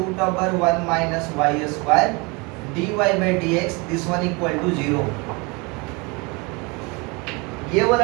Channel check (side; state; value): left; quieter; 27.9 dB